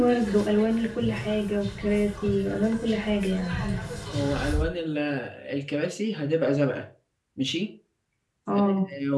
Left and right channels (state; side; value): identical; both; correlation 1.00